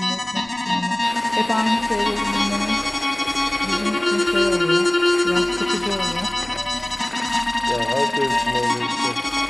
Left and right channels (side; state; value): left; noise; rumble, 26 dB below the sound